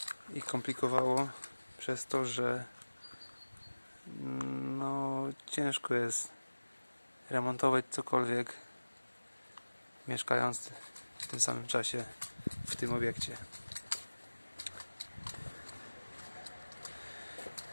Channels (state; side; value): inverted; both; correlation -1.00